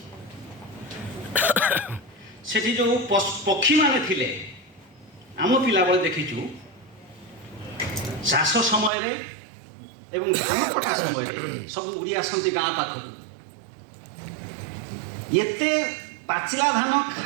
ସେଠି ଯେଉଁ ପକ୍ଷୀମାନେ ଥିଲେ ଆମ ପିଲାବେଳେ ଦେଖିଛୁ ଚାଷ ସମୟରେ ଏବଂ ଧାନ କଟା ସମୟରେ ସବୁ ଉଡ଼ି ଆସନ୍ତି ଗାଁ ପାଖକୁ। ଏତେ ପାଚିଲା ଧାନ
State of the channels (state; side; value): drops out; left; at 8.9 s